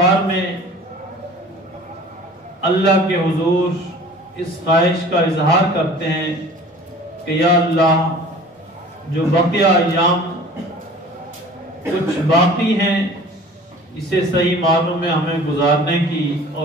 میں اللہ کے حضور اس خواہش کا اظہار کرتے ہیں کہ یا اللہ، جو بقیہ ایام کچھ باقی ہیں اسے صحیح معنوں میں ہمیں گزارنے کی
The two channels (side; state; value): both; normal; correlation 0.45